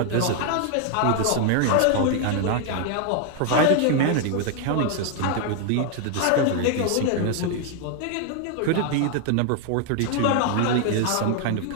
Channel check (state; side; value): different; both; correlation 0.00